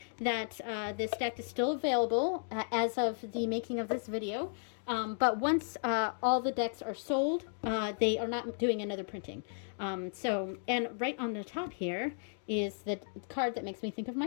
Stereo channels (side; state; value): right; silent; digital silence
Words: that this deck is still available as of the making of this video, but once all the decks are sold, they are not doing another printing. So, and right on the top here is the card that makes me think of